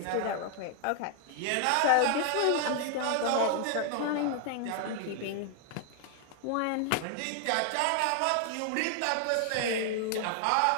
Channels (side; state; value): both; different; correlation 0.00